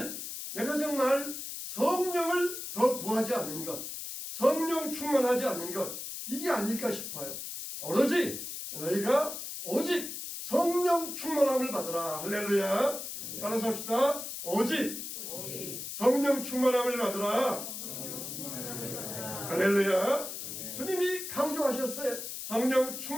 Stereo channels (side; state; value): left; noise; hiss, 7 dB below the sound